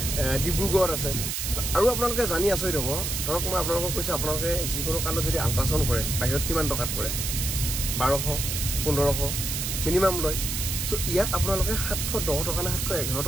ডিব্ৰুগড়ত আছে। আৰু আপোনালোকে জানি আচৰিত হ'ব, ধৰক মই আপোনালোকক কৈছোঁ, আপোনালোকে যিকোনো কাৰণত যদি আল্ট্ৰাচাউণ্ড কৰে বাহিৰত কিমান টকাত কৰে? 1200, 1500 মিনিমাম লয়। চ' ইয়াত আপোনালোকে 710 টকা নে 711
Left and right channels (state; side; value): noise; right; hiss, 2 dB below the sound